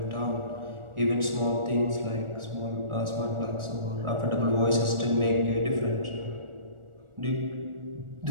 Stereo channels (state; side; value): late; left; 1.4 ms